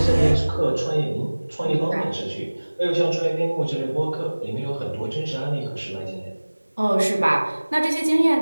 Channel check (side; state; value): both; inverted; correlation -1.00